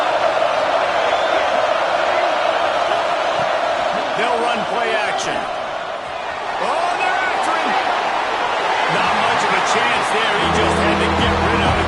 They'll run play action. Oh, they're after him. Not much of a chance there. He just had to get rid of it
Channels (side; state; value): both; identical; correlation 1.00